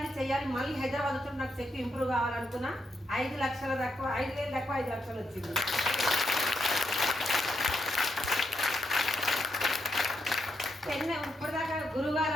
మళ్ళీ హైదరాబాద్ వచ్చినప్పుడు నాకు చెక్ ఇంప్రూవ్ కావాలనుకున్నా. 5 లక్షల తక్కువ, 5,000 తక్కువ 5 లక్షలు వచ్చింది. చెన్నై ఇప్పటిదాకా గురుగారు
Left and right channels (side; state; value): both; normal; correlation 0.81